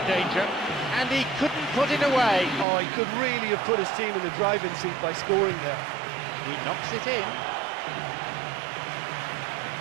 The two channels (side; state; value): left; drops out; at 2.7 s